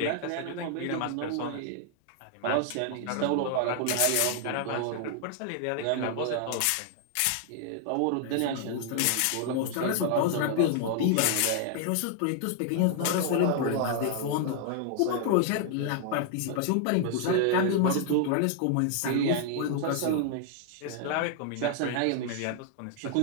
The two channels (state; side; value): different; both; correlation 0.00